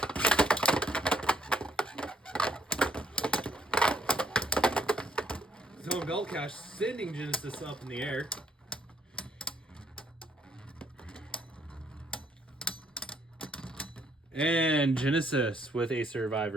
Zone bell cache sending Genesis up in the air. And Genesis with a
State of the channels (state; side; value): normal; both; correlation 0.69